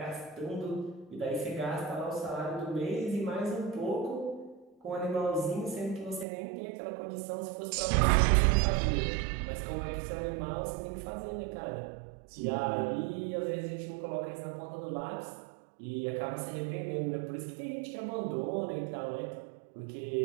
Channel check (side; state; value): left; drops out; at 6.2 s